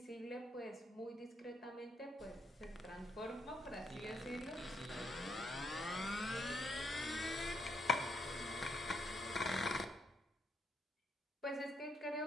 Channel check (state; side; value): normal; both; correlation 0.75